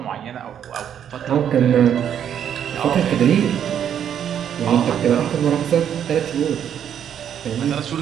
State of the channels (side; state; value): left; quieter; 9.2 dB